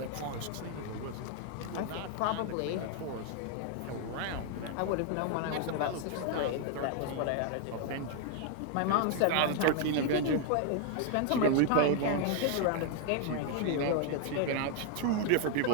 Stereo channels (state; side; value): different; both; correlation 0.00